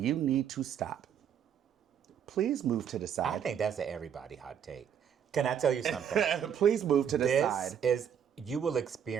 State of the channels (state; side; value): quieter; left; 8.4 dB